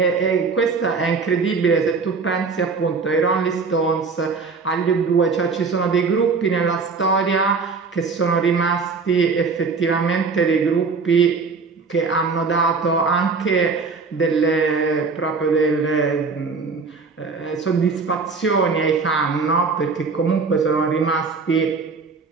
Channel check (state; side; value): quieter; left; 4.7 dB